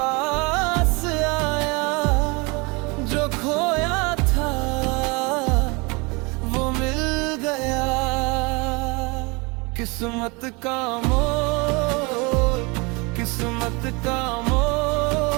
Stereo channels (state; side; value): quieter; left; 28.3 dB